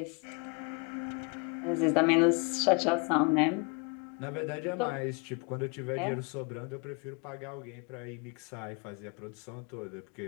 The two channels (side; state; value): right; quieter; 32.4 dB